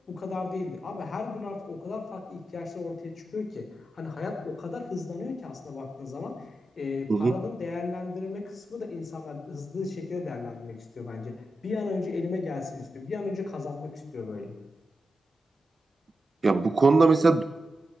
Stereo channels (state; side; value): normal; both; correlation 0.90